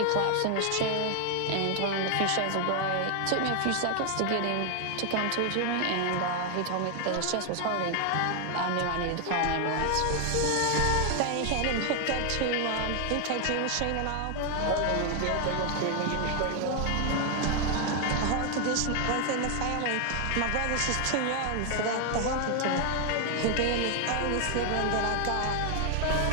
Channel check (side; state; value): both; different; correlation 0.00